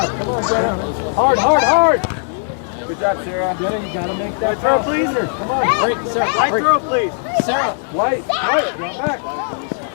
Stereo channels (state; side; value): silent; right; 67 dB below the other